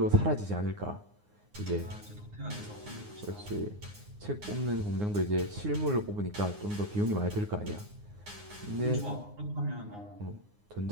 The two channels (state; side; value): late; left; 9.7 ms